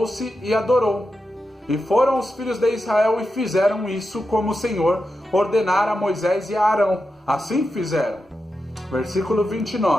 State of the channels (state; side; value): normal; both; correlation 0.89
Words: e adorou. E foram os filhos de Israel e fizeram isso como o Senhor ordenara a Moisés e a Arão. Assim fizeram. Versículo